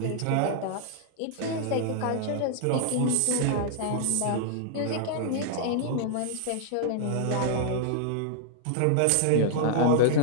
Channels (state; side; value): different; both; correlation -0.01